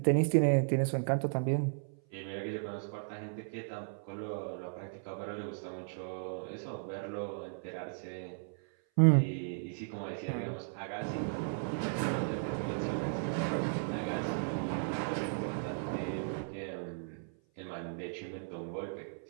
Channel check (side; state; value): left; silent; 54 dB below the other